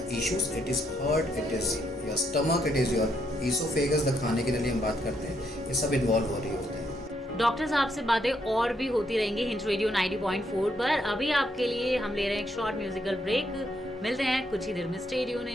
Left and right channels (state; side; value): normal; both; correlation 0.75